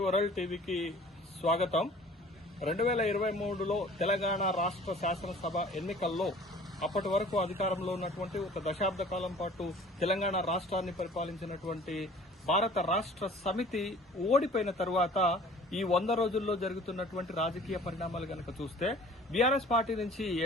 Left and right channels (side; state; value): both; normal; correlation 0.48